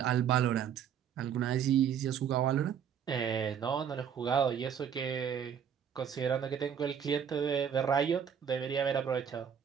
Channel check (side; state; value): left; quieter; 8.2 dB